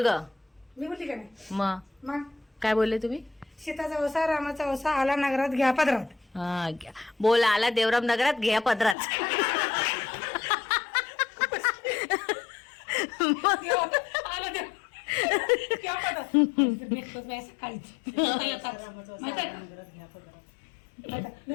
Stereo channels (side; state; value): right; drops out; at 9.0 s